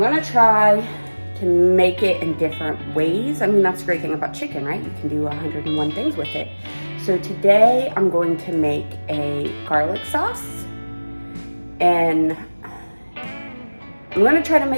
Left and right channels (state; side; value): inverted; both; correlation -1.00